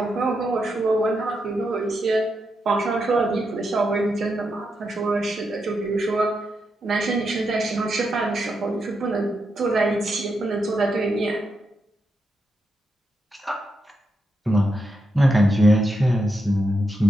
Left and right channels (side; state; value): both; normal; correlation 0.84